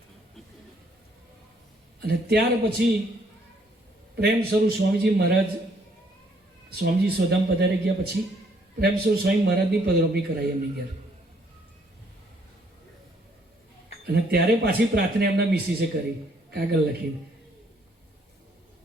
અને ત્યાર પછી પ્રેમ સ્વરૂપ સ્વામીજી મહારાજ, સ્વામીજી સોધામ પધારી ગયા પછી પ્રેમ સ્વરૂપ સ્વામી મહારાજની પધરામણી કરાઈ એમની ઘેર. અને ત્યારે પાછી પ્રાર્થના એમના મિસિસે કરી, કાગળ લખીને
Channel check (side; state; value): both; normal; correlation 0.66